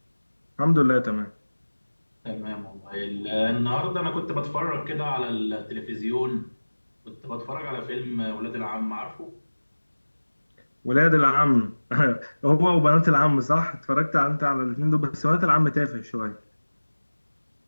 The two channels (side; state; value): both; inverted; correlation -1.00